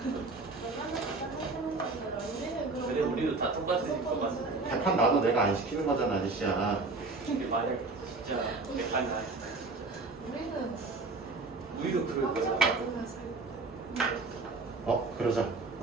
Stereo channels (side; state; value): left; quieter; 3.6 dB